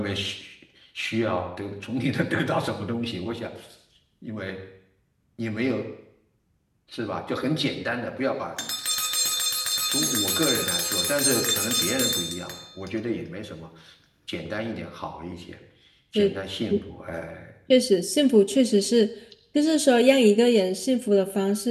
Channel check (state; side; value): identical; both; correlation 1.00